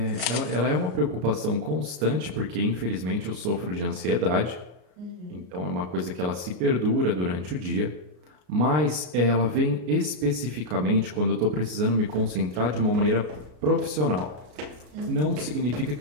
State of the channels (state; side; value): late; left; 33 ms